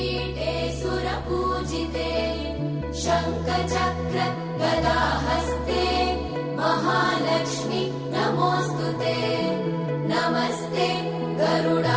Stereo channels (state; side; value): noise; right; rumble, 26 dB below the sound